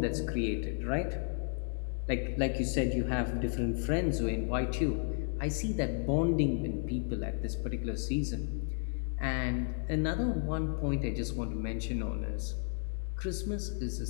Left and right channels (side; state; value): right; silent; 56 dB below the other